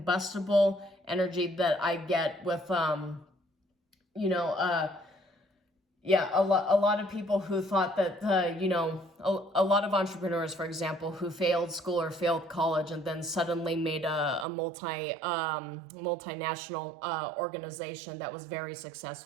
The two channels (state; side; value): drops out; left; at 14.5 s